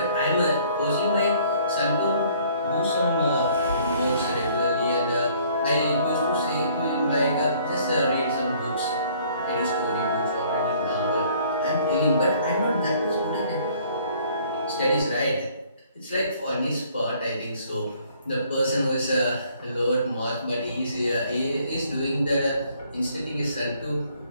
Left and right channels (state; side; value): inverted; both; correlation -0.59